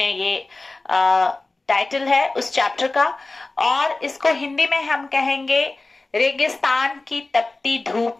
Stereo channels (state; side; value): quieter; right; 3.2 dB